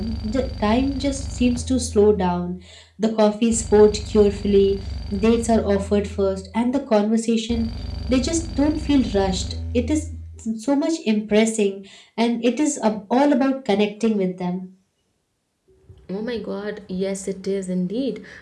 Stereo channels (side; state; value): both; identical; correlation 1.00